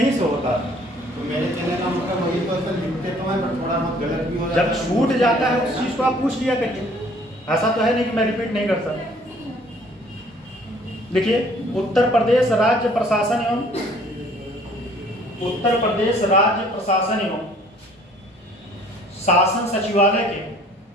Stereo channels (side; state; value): both; normal; correlation 0.56